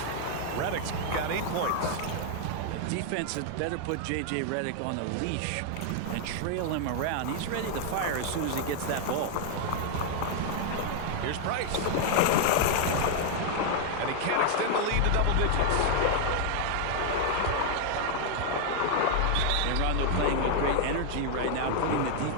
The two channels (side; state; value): both; different; correlation 0.00